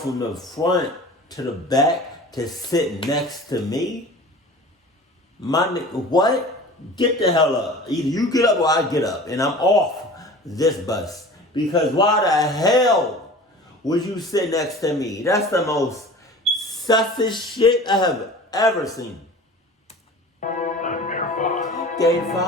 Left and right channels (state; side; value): normal; both; correlation 0.40